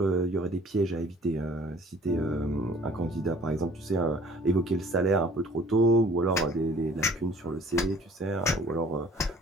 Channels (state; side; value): normal; both; correlation 0.53